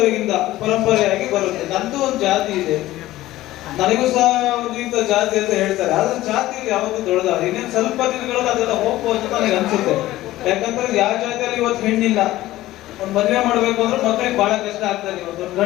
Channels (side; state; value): right; quieter; 16.0 dB